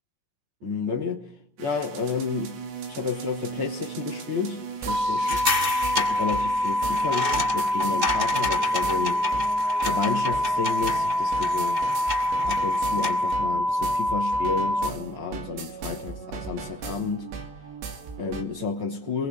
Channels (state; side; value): late; left; 14 ms